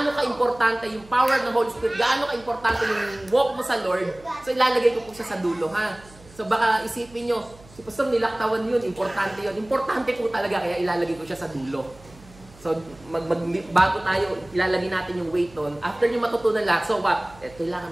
ka-importante yung power ng Holy Spirit, gaano ka-importante yung walk mo sa Lord, so ilalagay ko po siya sa dulo, ha? So baka isipin nyo, Si Pastor nilaktawan yun, importante yun. Importante po talaga, kaya ilalagay ko siya sa dulo. So, bago tayo, ilalagay natin yung weight doon. After nyo matutunan lahat, so kailangan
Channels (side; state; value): right; noise; hum, 23 dB below the sound